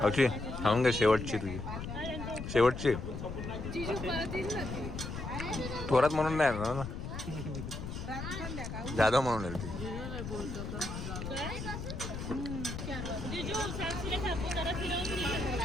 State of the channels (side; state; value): left; noise; rumble, 6 dB below the sound